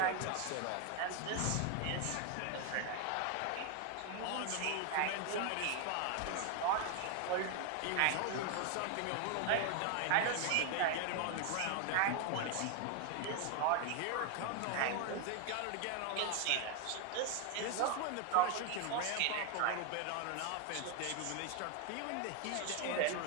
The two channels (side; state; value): both; different; correlation 0.00